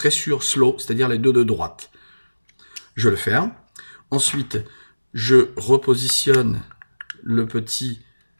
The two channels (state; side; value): inverted; both; correlation -1.00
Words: sur slow, c'est-à-dire les deux de droite. Je le ferme. Ensuite, je repositionne le petit